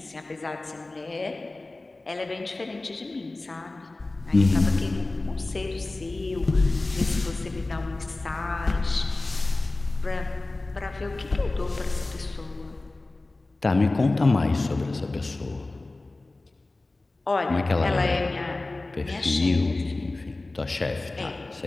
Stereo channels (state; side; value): quieter; right; 3.0 dB